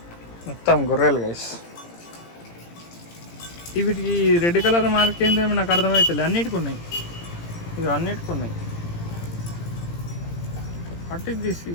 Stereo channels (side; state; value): right; late; 17 ms